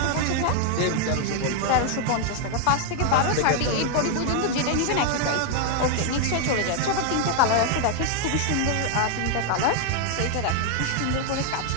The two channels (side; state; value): both; different; correlation 0.00